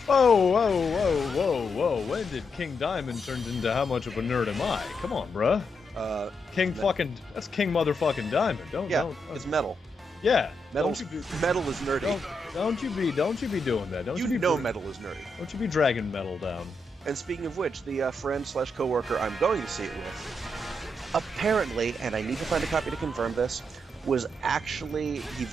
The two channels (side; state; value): both; normal; correlation 0.82